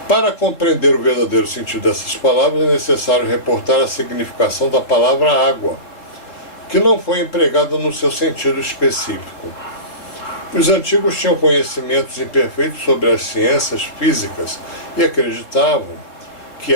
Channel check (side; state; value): right; late; 3.8 ms